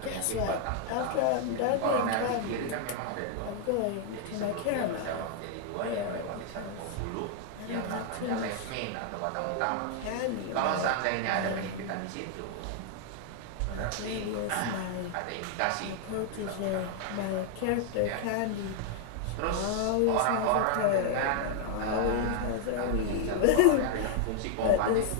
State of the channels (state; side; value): different; both; correlation 0.00